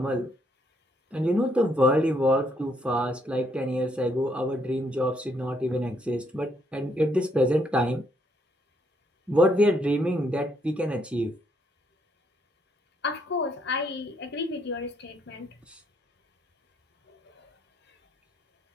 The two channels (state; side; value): normal; both; correlation 0.72